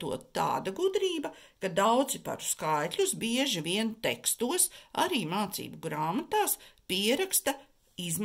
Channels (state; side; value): identical; both; correlation 1.00